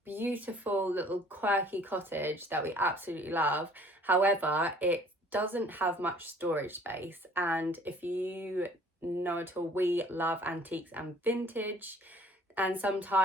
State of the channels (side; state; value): both; normal; correlation 0.54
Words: beautiful little quirky cottage that we absolutely love. However, it doesn't have much storage space, and if you know at all, we love antiques and vintage, and